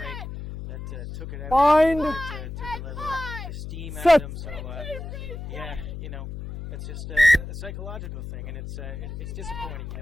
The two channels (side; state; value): left; noise; hum, 8 dB below the sound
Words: that took it out. Took a little steam out of them. So, it's just a psychological thing, and it's disappointing.